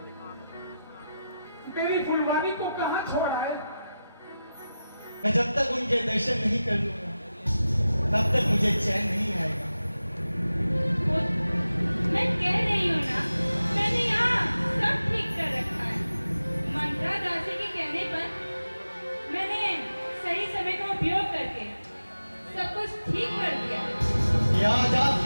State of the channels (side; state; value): both; inverted; correlation -0.92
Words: मेरी फुलवारी को कहाँ छोड़ा है? मैं जब तक उनके दर्शन नहीं कर लूंगा तब तक मुझे चैन नहीं आएगा। मैं कह रही हूँ ना, मैंने यहाँ सब ठीक कर रखा है। मंत्रा दासी के कहने पर मैंने सही समय का उपयोग करके सब कुछ ठीक कर दिया। ये आज आप